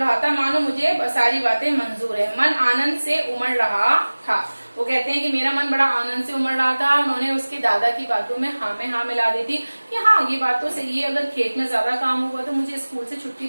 था मानो मुझे सारी बातें मंजूर है। मन आनंद से उमड़ रहा था। वो कहते हैं कि मेरा मन बड़ा आनंद से उमड़ रहा था। उन्होंने उसके दादा की बातों में हाँ मिला दी थी कि हाँ ये बात तो सही है, अगर खेत में ज्यादा काम होगा तो मुझे स्कूल से छुट्टी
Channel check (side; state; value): both; inverted; correlation -1.00